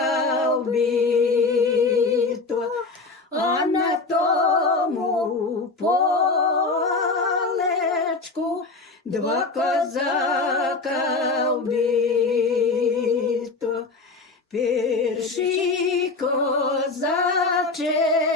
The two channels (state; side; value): quieter; right; 3.8 dB